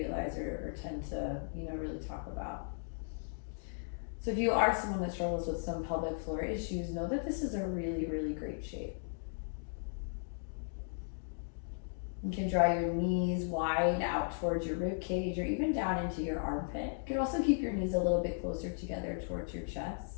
or tend to, really talk about. So if you are someone that struggles with some pelvic floor issues, know that this is a really, really great shape. You can draw your knees wide out towards your rib cage or even down into your armpit. You can also keep your knees a little bit closer together towards your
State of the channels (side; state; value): right; silent; digital silence